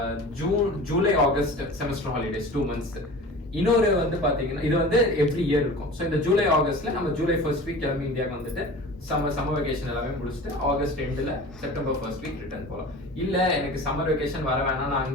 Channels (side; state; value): both; normal; correlation 0.38